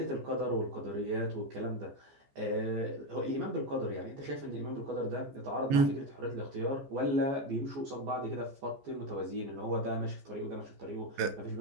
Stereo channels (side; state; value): left; late; 14 ms